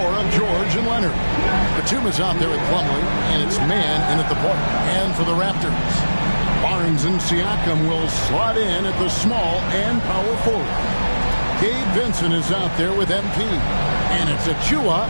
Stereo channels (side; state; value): both; inverted; correlation -1.00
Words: of George and Leonard. Batum is out there with Plumlee, and it's man in at the point. And for the Raptors, Barnes and Siakam will slot in at the small and power forward. Gabe Vincent is out there with MP. And it's Achua